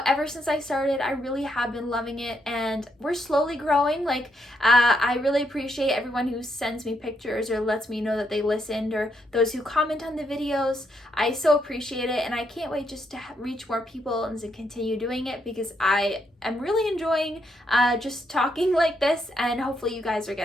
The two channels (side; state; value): both; normal; correlation 0.77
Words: ever since I started, I really have been loving it, and we're slowly growing. Like, I really appreciate everyone who sends me pictures or lets me know that they listened, or those who comment on the videos. I so appreciate it, and I can't wait just to reach more people and to continue doing it because I am really enjoying just talking like this, and hopefully you guys are